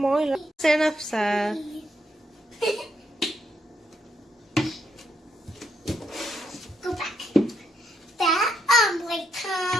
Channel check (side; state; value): both; normal; correlation 0.77